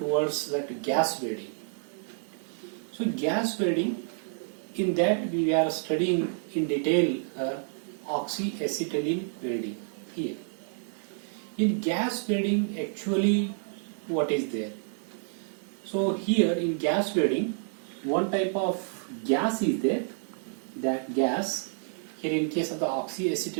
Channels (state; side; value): silent; left; digital silence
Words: towards that gas welding. So gas welding, in that we are studying in detail oxyacetylene welding here. In gas welding, actually what is there? So here in gas welding, one type of gas is there. That gas, here in case of the